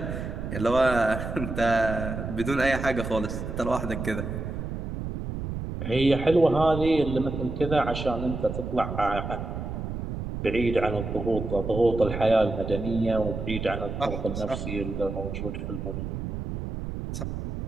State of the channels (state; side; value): noise; right; rumble, 5 dB below the sound